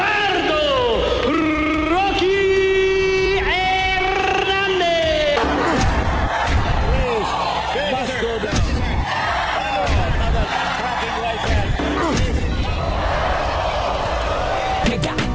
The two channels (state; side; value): identical; both; correlation 1.00